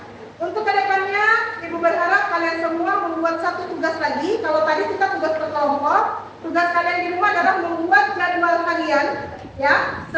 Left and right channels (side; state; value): both; identical; correlation 1.00